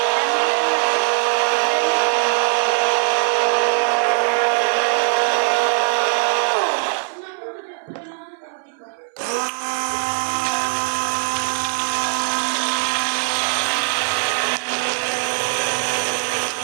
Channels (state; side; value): silent; left; 59 dB below the other